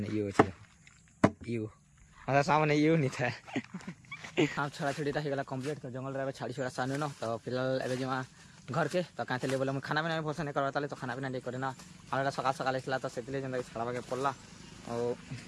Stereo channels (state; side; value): identical; both; correlation 1.00